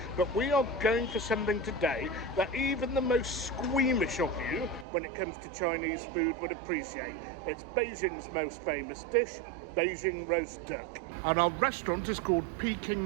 But we are going for something today that even the most squeamish of you, when it comes to Chinese food, would appreciate. It's Beijing's most famous dish, Beijing roast duck. And our restaurant is called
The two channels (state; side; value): drops out; left; at 4.9 s